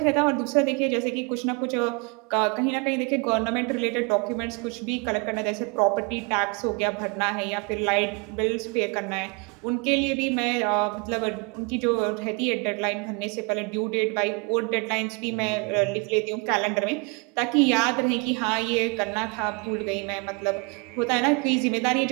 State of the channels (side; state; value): left; quieter; 31.7 dB